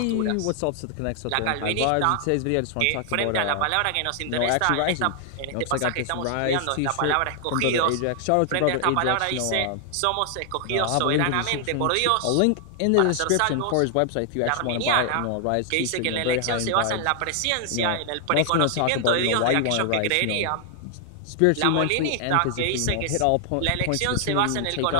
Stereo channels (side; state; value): both; different; correlation 0.00